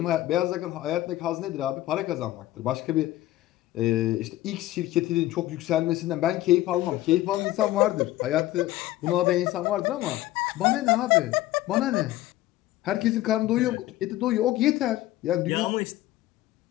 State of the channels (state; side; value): quieter; right; 15.6 dB